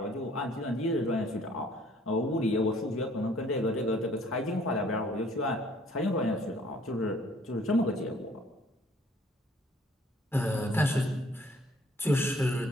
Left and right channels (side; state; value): both; normal; correlation 0.59